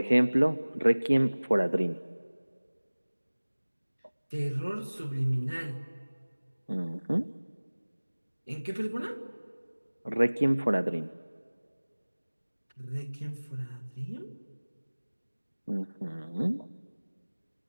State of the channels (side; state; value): both; inverted; correlation -1.00